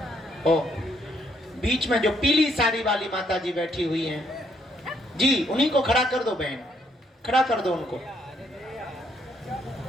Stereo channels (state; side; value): normal; both; correlation 0.72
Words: ओ, बीच में जो पीली साड़ी वाली माता जी बैठी हुई हैं, जी उन्हीं को खड़ा कर दो बहन, खड़ा कर दो उनको।